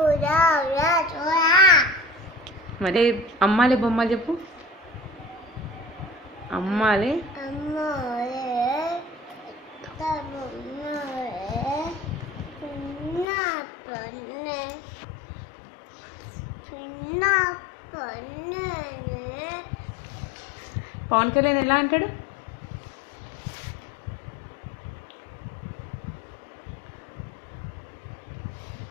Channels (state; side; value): drops out; right; at 13.2 s